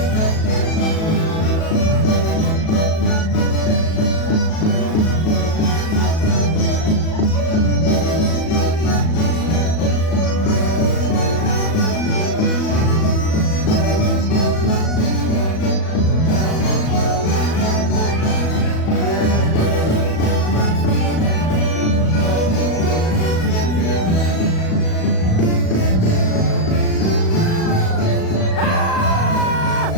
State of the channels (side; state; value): right; late; 37 ms